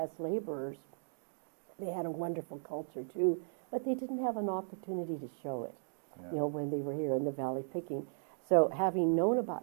laborers. They had a wonderful culture too, but they didn't have an opportunity to show it, you know, when they were here in the valley picking. So having known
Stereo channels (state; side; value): silent; left; digital silence